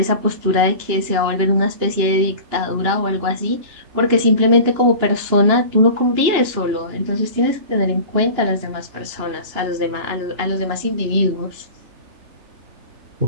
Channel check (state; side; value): late; left; 2.9 ms